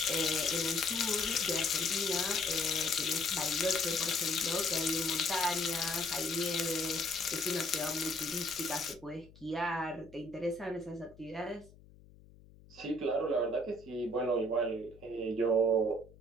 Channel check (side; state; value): left; noise; hum, 23 dB below the sound